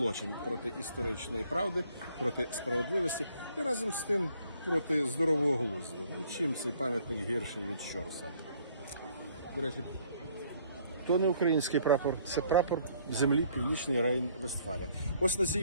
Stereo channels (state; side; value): inverted; both; correlation -0.63